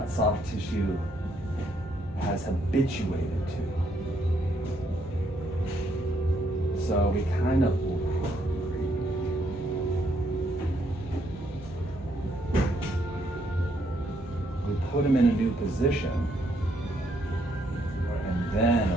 soft tissue has habituated to. So we kind of put him in a new position and then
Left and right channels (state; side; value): normal; both; correlation 0.72